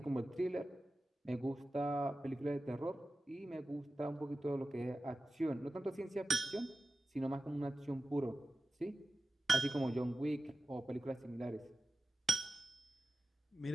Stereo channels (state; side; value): normal; both; correlation 0.94